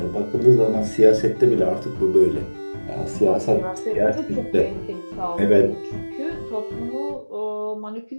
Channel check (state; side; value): inverted; both; correlation -1.00